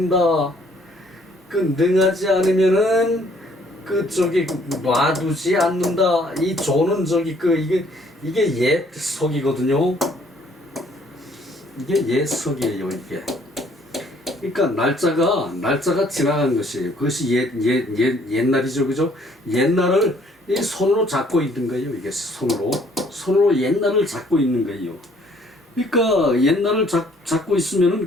능하지 않으면은 그 저기 놔두지 않는다. 이 조는 저기 그 이게 옛 석이거든요. 이게 옛 석이에요. 이게. 그러니까 날짜가 지나간 것이에요. 그것이 옛날이죠, 그죠? 옛날을 이 손으로 잡고 있는 거예요. 이게 손으로 옛날을 잡고 있는 거예요. 그러니까 옛날을 잡고 있으면은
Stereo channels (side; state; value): both; normal; correlation 0.62